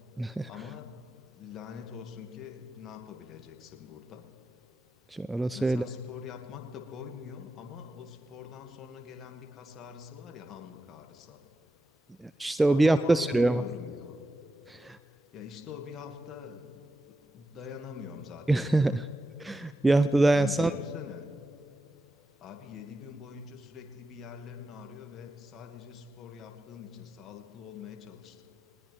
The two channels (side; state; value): both; normal; correlation 0.90